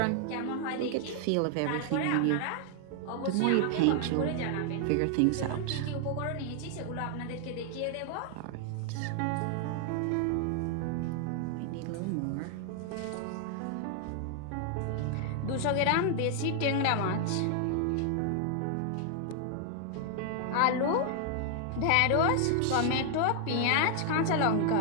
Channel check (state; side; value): different; both; correlation 0.00